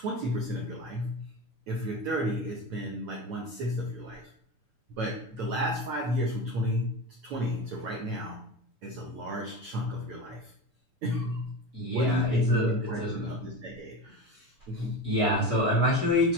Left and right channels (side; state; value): left; late; 6.9 ms